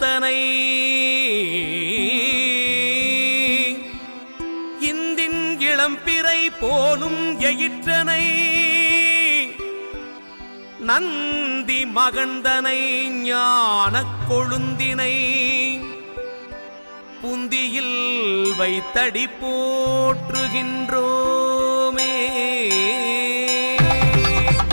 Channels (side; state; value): both; inverted; correlation -1.00